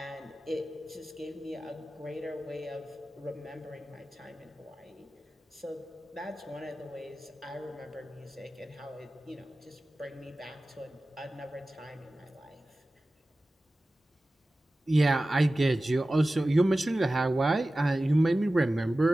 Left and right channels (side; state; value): both; normal; correlation 0.96